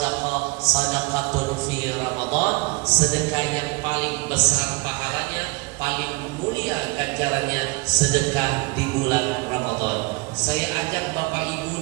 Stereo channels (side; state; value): left; quieter; 25.1 dB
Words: sadaqatun fi Ramadan. Sedekah yang paling besar pahalanya, paling mulia ganjarannya, sedekah di bulan Ramadan. Saya ajak Bapak Ibu